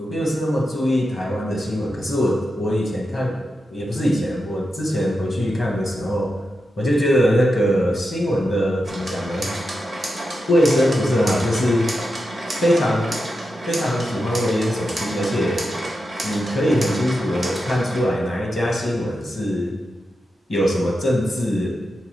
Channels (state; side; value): normal; both; correlation 0.88